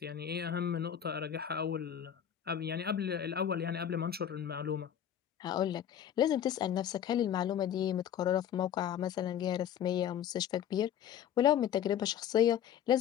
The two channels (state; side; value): quieter; right; 9.7 dB